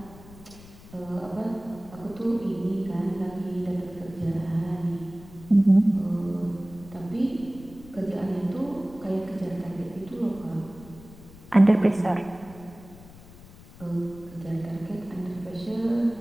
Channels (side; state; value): left; noise; rumble, 19 dB below the sound